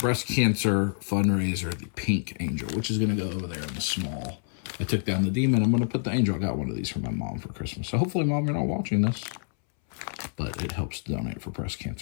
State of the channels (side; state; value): right; silent; 60 dB below the other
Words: cancer fundraiser, the Pink Angel, which is going to go over there in the small. I took down the demon. I'm going to put the angel. I got one of these for my mom for Christmas. So hopefully, Mom, you're not watching this. But it helps to donate for breast